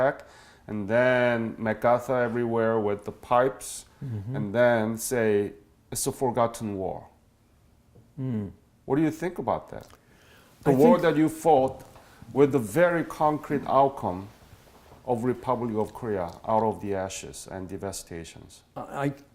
and then MacArthur everywhere with the pipes, and then say it's a forgotten war. What do you think about that? The I war think- that you fought with the very concrete outcome of Republic of Korea out of the ashes and devastations.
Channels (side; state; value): both; identical; correlation 1.00